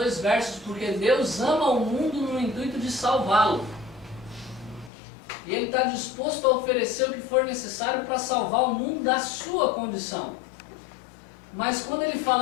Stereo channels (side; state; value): right; drops out; at 4.9 s